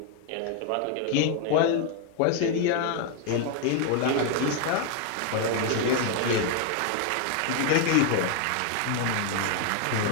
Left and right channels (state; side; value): different; both; correlation 0.00